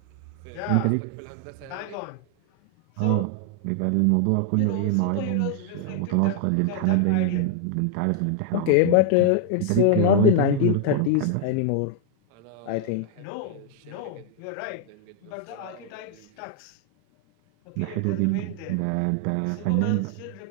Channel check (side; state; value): both; different; correlation 0.00